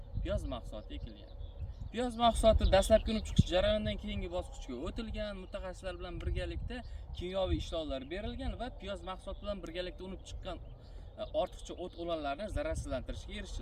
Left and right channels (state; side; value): identical; both; correlation 1.00